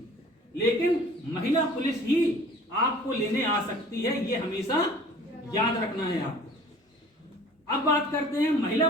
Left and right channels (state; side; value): normal; both; correlation 0.48